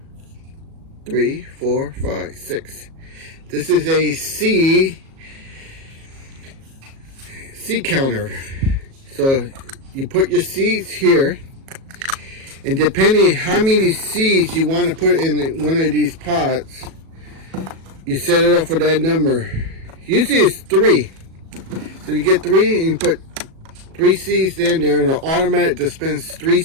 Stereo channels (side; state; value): left; late; 37 ms